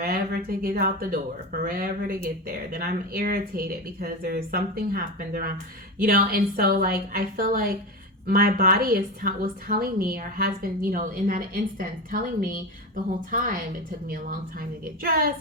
to get out the door, forever to get there. Then I'm irritated because there's something happened around, and so like I feel like my body was telling me, or has been, in that instance, telling me the whole time. It took me a long time to get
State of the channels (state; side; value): normal; both; correlation 0.20